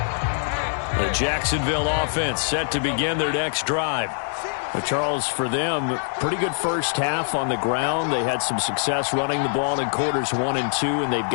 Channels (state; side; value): silent; right; digital silence